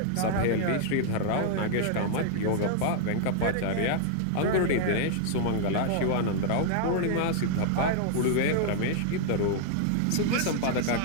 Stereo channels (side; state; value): both; different; correlation 0.00